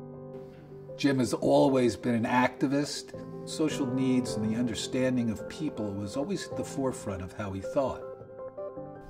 Jim has always been an activist. Social needs and the understanding of people was always at the forefront of how he thought.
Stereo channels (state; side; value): identical; both; correlation 1.00